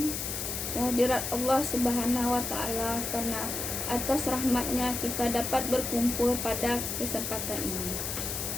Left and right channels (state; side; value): noise; left; hiss, 3 dB below the sound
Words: kehadirat Allah Subhanahu wa Ta'ala, karena atas rahmatnya kita dapat berkumpul pada kesempatan ini.